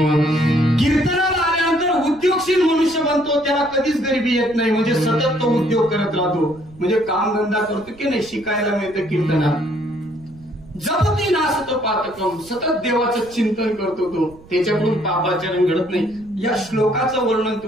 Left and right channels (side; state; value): right; noise; rumble, 23 dB below the sound